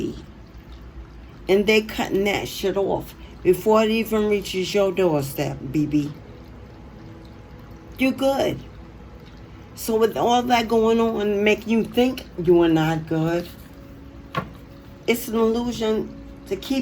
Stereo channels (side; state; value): both; identical; correlation 1.00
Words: And they cutting that shit off before it even reaches your doorstep, BB. You're good. So with all that going on, making you think you are not good, it's an illusion to